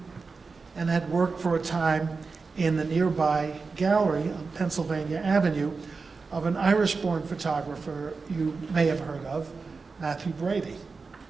and had worked for a time in the nearby gallery on Pennsylvania Avenue of an Irish-born photographer you may have heard of, Matthew Brady.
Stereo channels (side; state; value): left; quieter; 4.4 dB